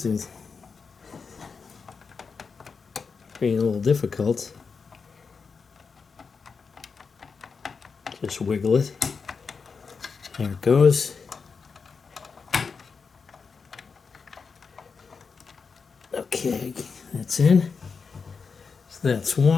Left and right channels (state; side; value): quieter; right; 5.3 dB